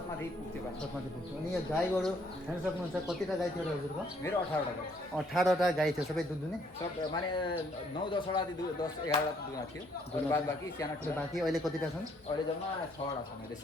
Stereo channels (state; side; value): normal; both; correlation 0.66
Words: माथि पुग्थ्यो पानी छत माथि पुग्थ्यो अनि यो गाई गोरु हेर्न सक्नुहुन्छ कतिवटा गाई थियो हजुरको मेरो 18 वटा 18वटा गाई थियो सबै दुध दुने सब माने 9-10 वटा 10-11 वटा दुना थियो अनि बाद बाँकी साना ठुला बाँकी अहिले कतिवटा छन् अहिले जम्मा 6 वटा छ मैले